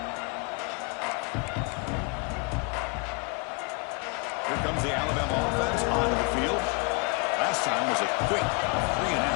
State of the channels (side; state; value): right; quieter; 31.6 dB